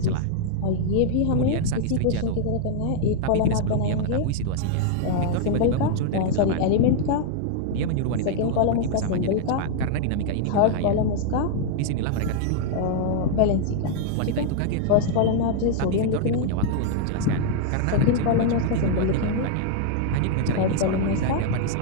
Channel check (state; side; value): different; both; correlation -0.01